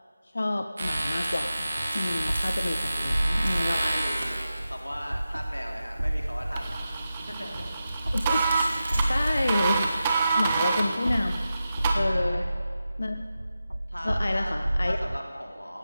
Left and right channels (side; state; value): both; inverted; correlation -0.92